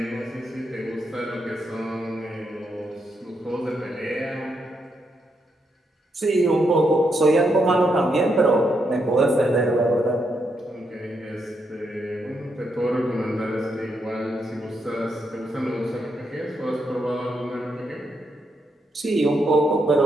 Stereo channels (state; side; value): normal; both; correlation 0.80